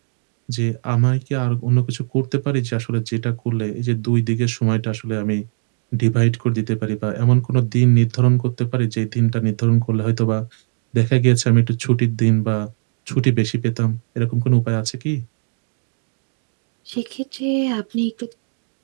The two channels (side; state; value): left; silent; 66 dB below the other